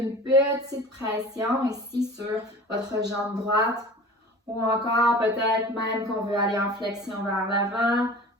petite pression ici sur votre jambe droite. Ou encore, peut-être même qu'on veut aller en flexion vers l'avant,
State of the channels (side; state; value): both; normal; correlation 0.40